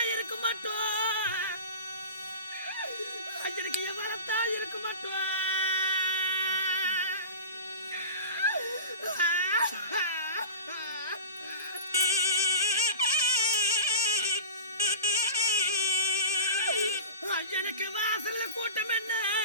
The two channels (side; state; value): both; inverted; correlation -0.33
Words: இருக்க மாட்டோம் எனக்கு எவளத்தா இருக்க மாட்டோம் எனக்கு வாசல்ல கூட்டம் என்ன